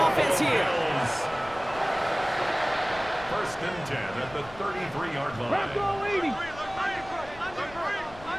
here. 1st and 10 at the 33-yard line. Bronco 80.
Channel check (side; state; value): left; noise; rumble, 19 dB below the sound